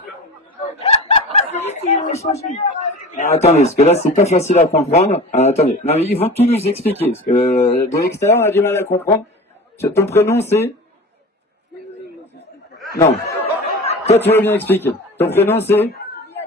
Attendez, parce que là c'est pas facile à comprendre. Attendez, non, mais ils vont tout nous expliquer. Parce que de l'extérieur on a du mal à comprendre. Ton prénom c'est... Non. Toi tu veux bien expliquer. Ton prénom c'est...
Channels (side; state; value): both; normal; correlation 0.35